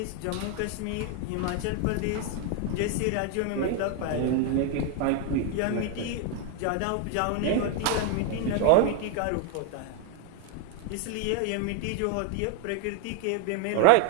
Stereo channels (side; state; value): both; different; correlation 0.01